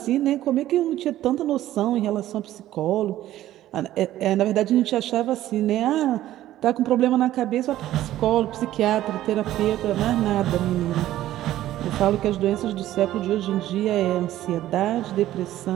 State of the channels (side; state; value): left; quieter; 13.8 dB